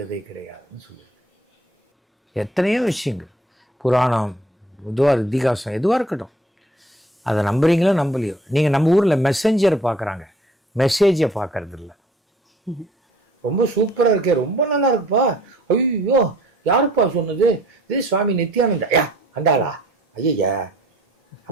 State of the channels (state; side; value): normal; both; correlation 0.55